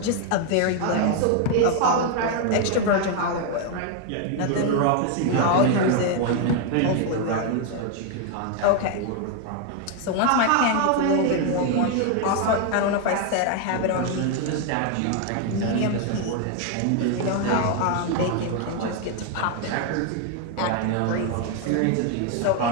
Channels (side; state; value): both; different; correlation 0.01